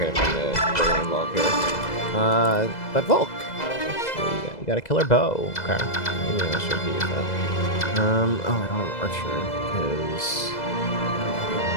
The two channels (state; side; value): late; right; 2.0 ms